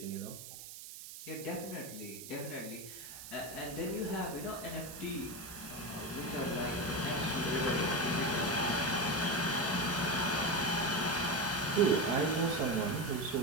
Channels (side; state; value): right; noise; hiss, 12 dB below the sound